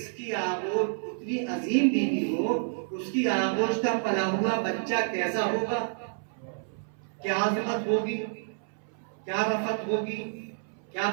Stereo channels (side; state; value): left; silent; 59 dB below the other